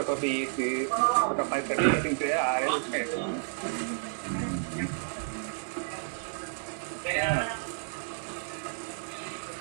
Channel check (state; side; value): silent; left; digital silence